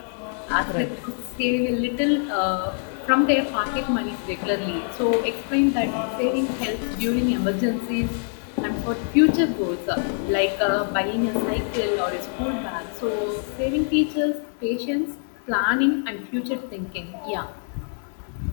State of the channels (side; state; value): right; silent; 56 dB below the other